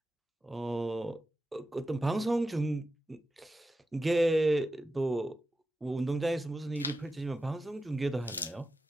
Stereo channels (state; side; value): normal; both; correlation 0.91